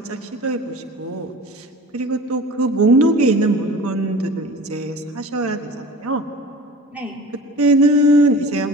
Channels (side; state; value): both; normal; correlation 0.39